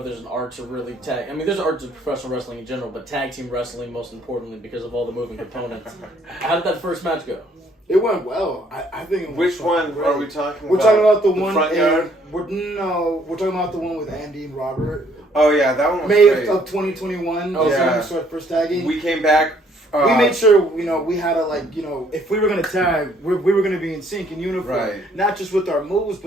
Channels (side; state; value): both; normal; correlation 0.64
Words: there's an art to really tag. I mean, there's an art to professional wrestling in general, but tag team wrestling most importantly because of all the moving components. How did that first match go? It went well. I think it went Which one are we talking about? We're talking about the one front yard? we're talking about the one with Andy and Robert. Oh, yeah, that one was May great. of 2021. Oh, That's when yeah. we started first tagging. We came back. We made sure, you know, we had to, like, you know, if we were going to tag, we were going to be in sync, in uniform. Right. Not just with our moves,